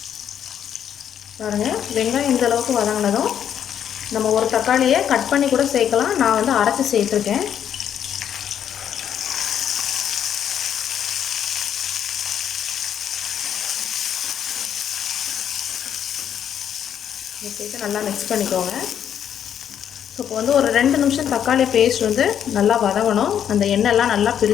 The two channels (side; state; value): right; quieter; 9.2 dB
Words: பாருங்கள், வெங்காயம் இந்த அளவுக்கு வதங்கினதும் நம்ம ஒரு தக்காளியை கட் பண்ணி கூட சேர்க்கலாம். நான் வந்து அரைச்சி சேர்த்துருக்கேன். சேர்த்து நல்லா மிக்ஸ் பண்ணிக்கோங்க. ஸோ இப்போ வந்து ஒரு 2 நிமிஷம் தக்காளி பேஸ்ட் வந்து நல்லா வதங்கணும். அந்த எண்ணெய்லாம் நல்லா